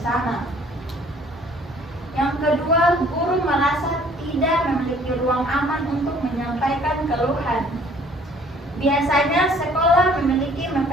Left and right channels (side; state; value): both; normal; correlation 0.56